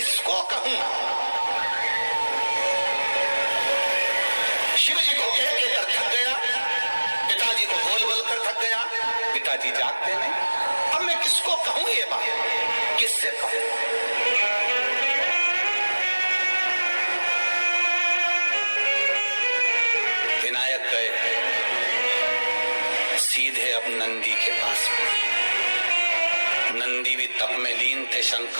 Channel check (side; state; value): both; inverted; correlation -1.00